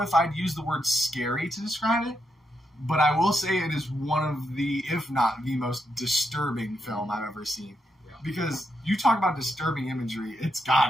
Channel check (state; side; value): normal; both; correlation 0.82